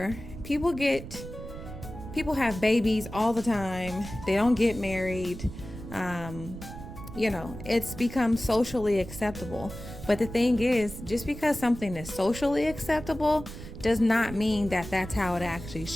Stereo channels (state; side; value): noise; right; rumble, 12 dB below the sound